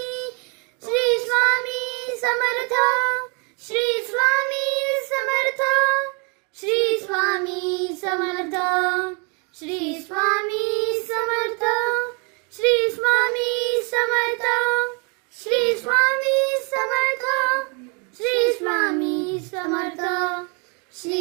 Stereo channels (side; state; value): left; quieter; 34.6 dB